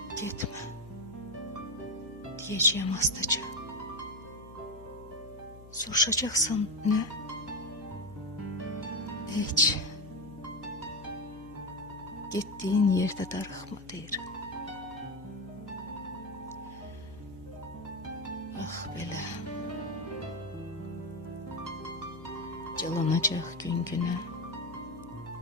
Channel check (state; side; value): noise; left; hum, 18 dB below the sound